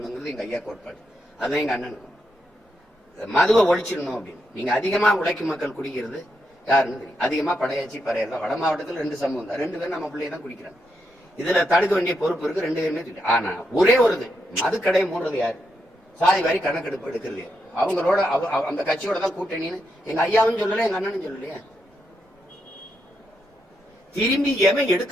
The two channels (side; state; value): both; normal; correlation 0.82